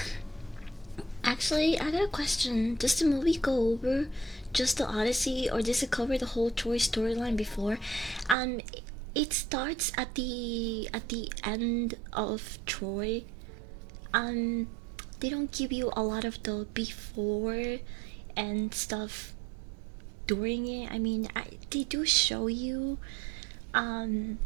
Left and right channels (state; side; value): drops out; left; at 8.3 s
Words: Actually, I got a question. Does the movie go over just the Odyssey, or does it cover the whole Troy storyline before? Um, it starts at the end of Troy. Um, they don't give you a lot of the before and stuff during it. I mean, they do show you um